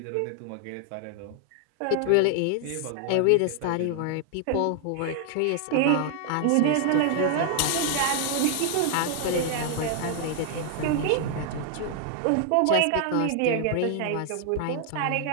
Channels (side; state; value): both; different; correlation 0.00